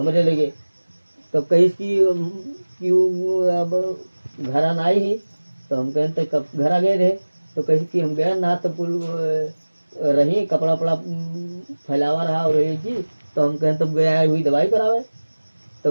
लगे तब कही कि वो अब घर आना आई ही, तो हम कहें तो कब घर आ गए रहे, तो कही कि हम गए ना, तो पुल रही कपड़ा वपड़ा फैलावा रहा और ये जी, तो हम कहें तब गया हुई दवाई करावे,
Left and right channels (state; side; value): inverted; both; correlation -1.00